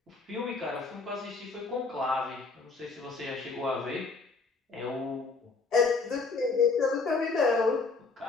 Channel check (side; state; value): right; quieter; 4.2 dB